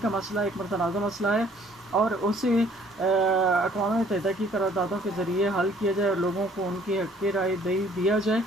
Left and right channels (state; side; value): normal; both; correlation 0.59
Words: کا مسئلہ ایک متنازع مسئلہ ہے اور اسے اقوام متحدہ کی قراردادوں کے ذریعے حل کیا جائے اور لوگوں کو ان کی حق رائے دیا جائے،